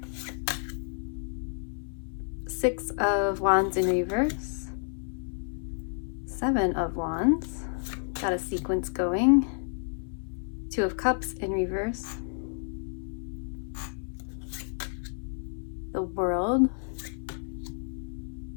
Six of Wands in reverse, Seven of Wands, got a sequence going, Two of Cups in reverse, the World,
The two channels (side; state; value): right; silent; 58 dB below the other